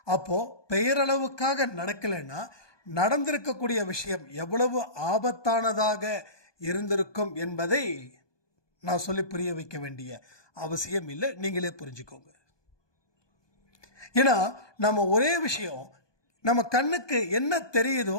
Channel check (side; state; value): right; late; 1.2 ms